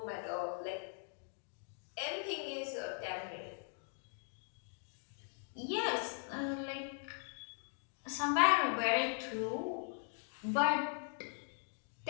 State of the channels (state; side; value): silent; right; 51 dB below the other